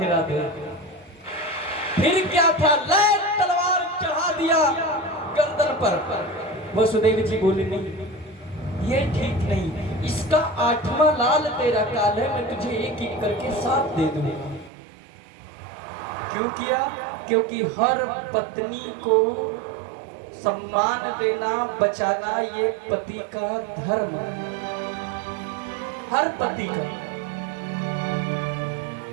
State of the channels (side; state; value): left; drops out; at 14.7 s